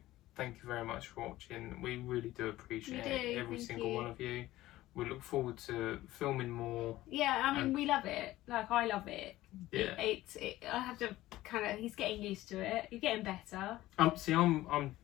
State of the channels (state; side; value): quieter; right; 16.2 dB